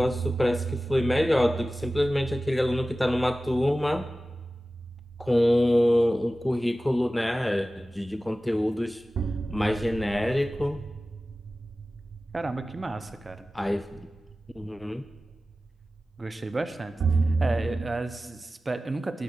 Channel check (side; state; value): both; normal; correlation 0.96